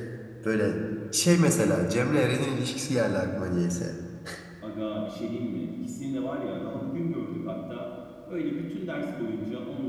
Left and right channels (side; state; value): both; identical; correlation 1.00